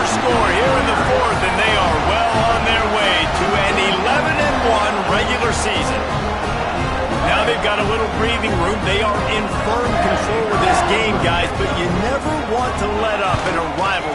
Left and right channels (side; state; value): both; identical; correlation 1.00